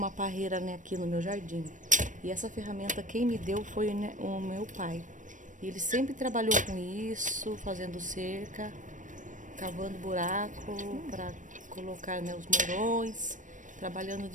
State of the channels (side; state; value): left; late; 0.37 ms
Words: parreira, né, aqui no meu jardim. E essa ferramenta quem me deu foi, né, o meu pai. Ele sempre trabalhou com isso, fazendo cerca, cavando buraco para colocar, né, os mourões, trabalhando